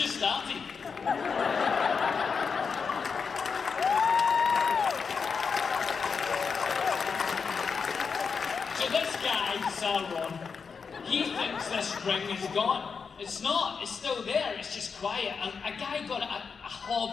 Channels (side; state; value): right; quieter; 5.6 dB